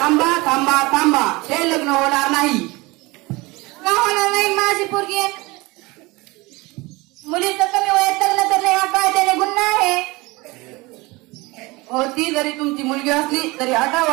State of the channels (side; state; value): left; quieter; 23.2 dB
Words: थांबा थांबा, हे लग्न होणार नाही. का होणार नाही? माझी पोरगी आहे. मुलीचं कमी वयात लग्न करणे हा कायद्याने गुन्हा आहे. हो, ती जरी तुमची मुलगी असली तरी 18